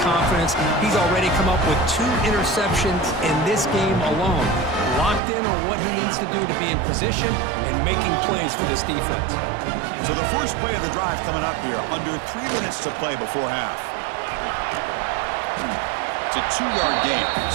confidence. He's already come up with 2 interceptions in this game alone. Locked in on what he needs to do to be in position and making plays for this defense. So the first play of the drive coming up here. Under 3 minutes to play before half. It's a 2-yard gain.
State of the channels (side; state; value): left; drops out; at 5.2 s